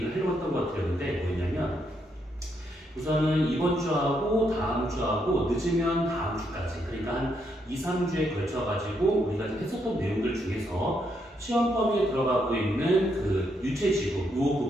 하려고 했던 것 같았는데 뭐였냐면 우선은 이번 주하고 다음 주하고 늦으면 다음 주까지 그러니까 한 2, 3주에 걸쳐가지고 우리가 지금 했었던 내용들 중에서 시험 범위에 들어가고 있는 유체지구 이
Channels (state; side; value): normal; both; correlation 0.77